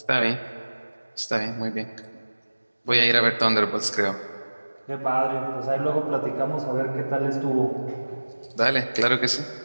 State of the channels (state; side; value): inverted; both; correlation -1.00